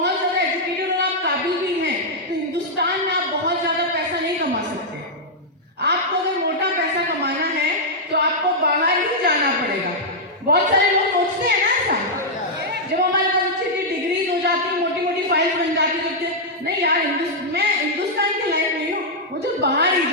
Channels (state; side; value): normal; both; correlation -0.05